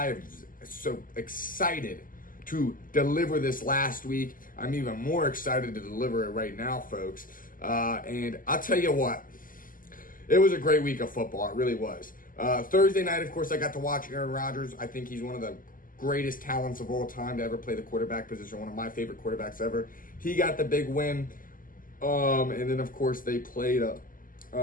so excited to deliver this last week. I'm even more excited to deliver it right now, folks. And I'll tell you what, it was a great week of football. It really was. Thursday night, of course, I got to watch Aaron Rodgers. I think he's one of the greatest talents of all time to ever play the quarterback position, one of my favorite quarterbacks ever. He got the big win. And then, of course, they played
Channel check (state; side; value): late; right; 0.40 ms